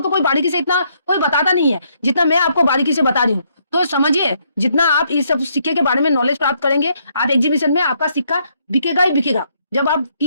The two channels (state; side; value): inverted; both; correlation -0.72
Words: तो कोई बारीकी से इतना कोई बताता नहीं है जितना मैं आपको बारीकी से बता रही हूँ। तो समझिए, जितना आप इस सब सिक्के के बारे में नॉलेज प्राप्त करेंगे, आप एग्जीबिशन में आपका सिक्का बिकेगा ही बिकेगा। जब आप